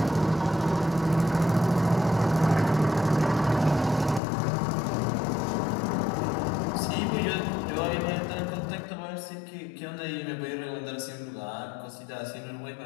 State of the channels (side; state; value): right; drops out; at 4.2 s